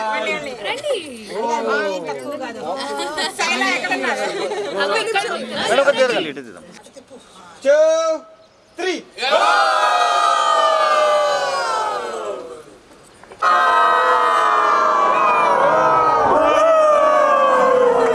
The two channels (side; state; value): both; identical; correlation 1.00